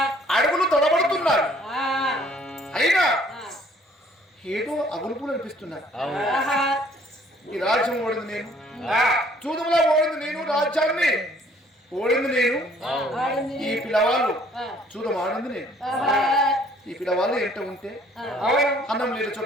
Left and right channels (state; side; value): normal; both; correlation 0.59